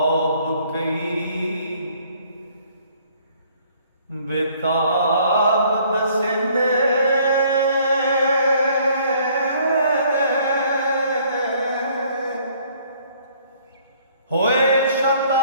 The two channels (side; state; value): both; inverted; correlation -0.60